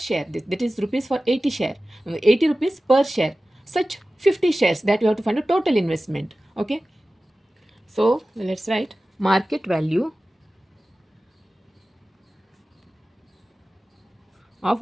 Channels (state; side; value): normal; both; correlation 0.96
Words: That is rupees for 80 share. 80 rupees per share. Such 50 shares that you have to find a total investment. Okay. So let's write market value of